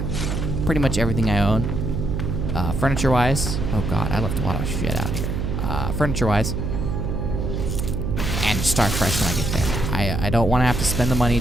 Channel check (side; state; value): right; noise; hum, 2 dB below the sound